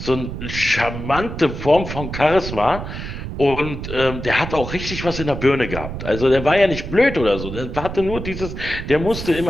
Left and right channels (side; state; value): right; noise; rumble, 7 dB below the sound